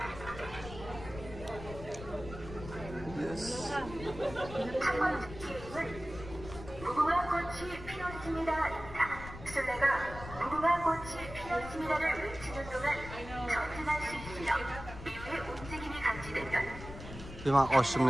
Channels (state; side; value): noise; left; rumble, 12 dB below the sound